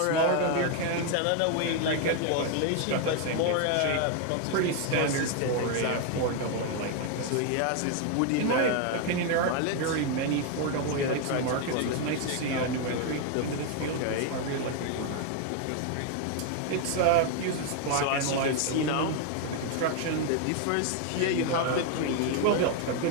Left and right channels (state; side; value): different; both; correlation 0.01